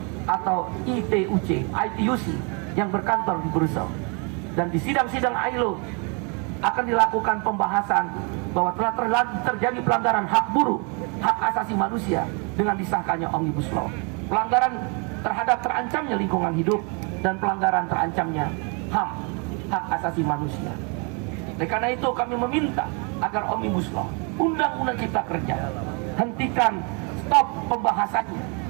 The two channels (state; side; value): quieter; left; 34.3 dB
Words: atau ITUC yang berkantor di Brussels. Dan di sidang-sidang ILO akan dilakukan pembahasan bahwa telah terjadi pelanggaran hak buruh, hak asasi manusia dengan disahkannya Omnibus Law. Pelanggaran terhadap terancamnya lingkungan hidup dan pelanggaran terancamnya HAM, hak asasi manusia. Oleh karena itu kami meminta agar Omnibus Law, Undang-Undang Cipta Kerja, hentikan, stop pembahasannya,